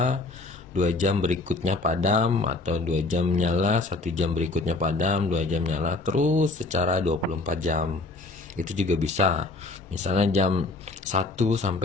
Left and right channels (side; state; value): right; quieter; 3.3 dB